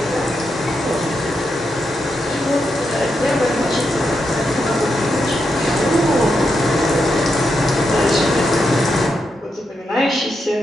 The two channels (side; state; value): both; normal; correlation 0.84